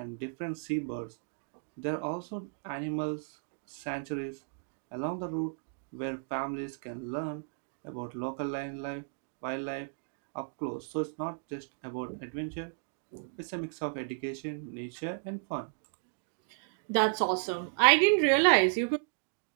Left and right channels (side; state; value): left; silent; digital silence